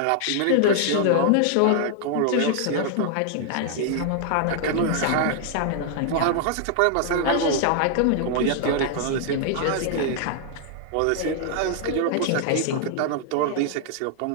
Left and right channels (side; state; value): both; different; correlation 0.00